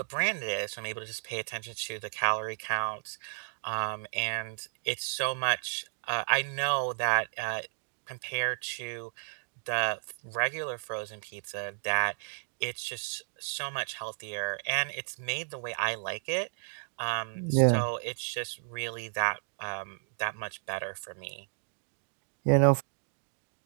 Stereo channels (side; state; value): left; silent; 56 dB below the other